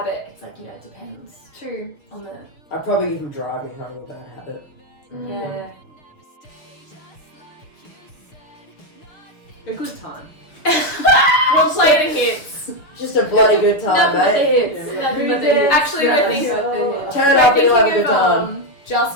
It's like, you know, it depends True. on the, I'd probably give him Drive Me Home with Bad Habit. yeah. A good time. We'll play the hits. Just a bloody good time, Nothing but the mate. hits. Yeah, Nothing but the hits. Actually, we're Nothing thinking- but the hits. Turn it We're up and you'll have a thinking good of time.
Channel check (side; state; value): right; late; 6.5 ms